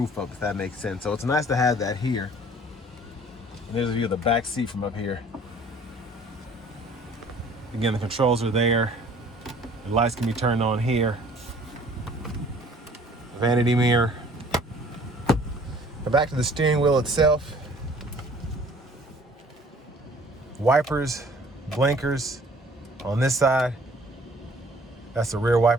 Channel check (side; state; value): both; normal; correlation 0.53